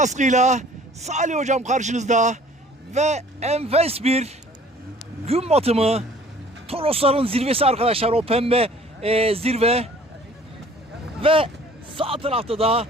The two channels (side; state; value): both; normal; correlation 0.52